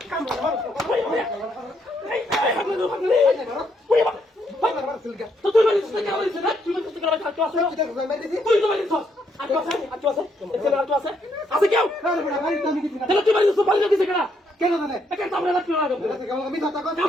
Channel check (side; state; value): both; normal; correlation 0.73